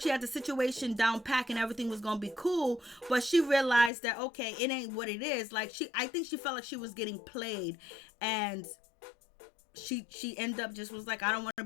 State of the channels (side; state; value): right; drops out; at 3.9 s